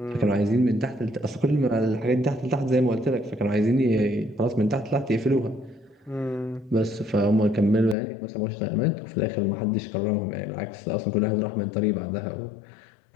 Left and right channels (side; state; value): right; drops out; at 8.0 s